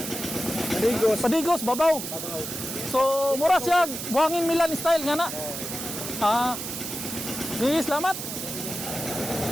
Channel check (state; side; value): noise; right; hiss, 6 dB below the sound